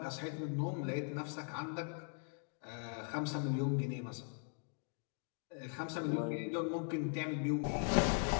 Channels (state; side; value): silent; right; 51 dB below the other